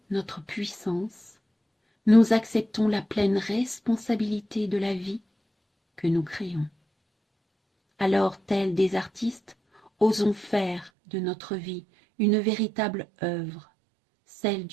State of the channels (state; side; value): drops out; left; at 10.9 s